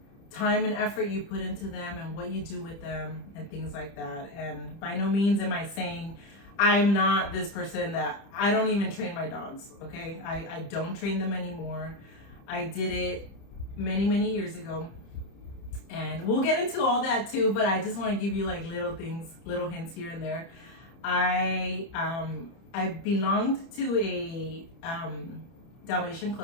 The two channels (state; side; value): late; right; 30 ms